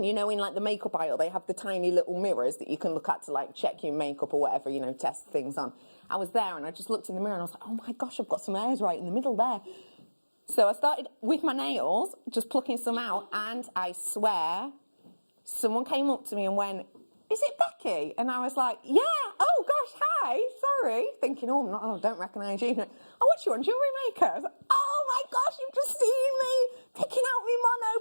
you know, in like the makeup aisle, they have the tiny little mirrors that you can look at to like check your makeup or whatever, you know, test things on. I was there and I just looked in the mirror and I was like, oh my gosh, I've got some hairs right in the middle there. So I started with my nails, just plucking some out, and I swear, someone came up to me and went, is it Becky? And I was like, yeah, oh gosh, hi, sorry. Thinking, I don't recognise you. Oh, what's you on, Jewellery Maker? I was like, oh my gosh, you've just seen me picking out my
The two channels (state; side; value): inverted; both; correlation -1.00